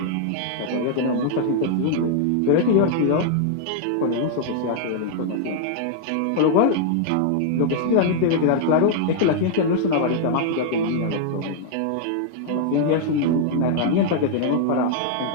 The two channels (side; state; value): both; different; correlation -0.01